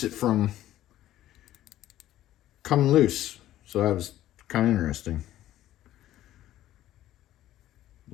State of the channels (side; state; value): right; quieter; 13.6 dB